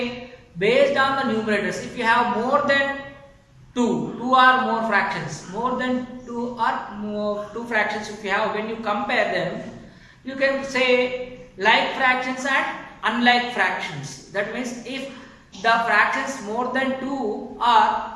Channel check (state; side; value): identical; both; correlation 1.00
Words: based on the numerators, if you have more than two or more fractions, more than two fractions, if you have, when you compare them, you can say like fractions and unlike fractions. That means if the fractions more than 2